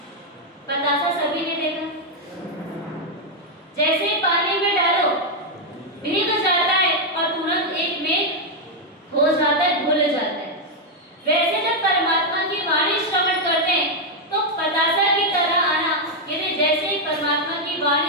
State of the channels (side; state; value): both; normal; correlation 0.00